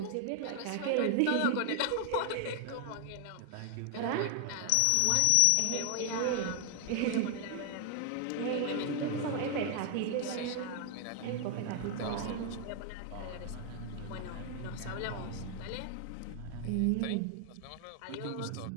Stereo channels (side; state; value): both; different; correlation 0.00